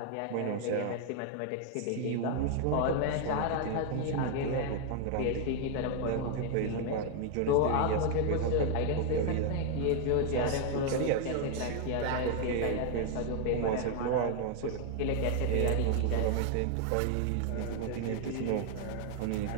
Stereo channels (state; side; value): different; both; correlation 0.00